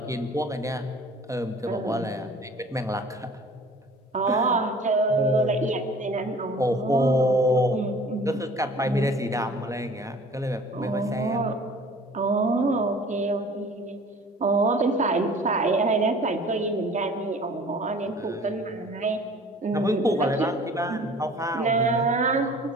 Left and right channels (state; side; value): normal; both; correlation 0.48